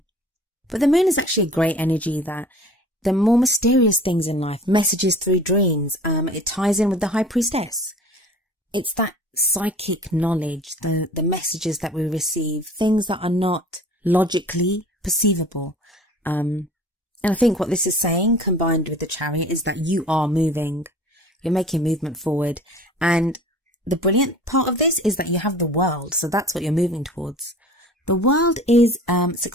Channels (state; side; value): normal; both; correlation 0.45